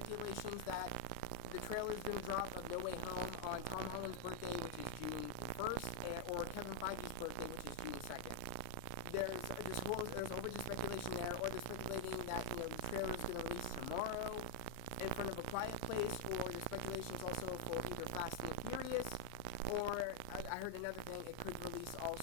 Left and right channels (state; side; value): different; both; correlation 0.00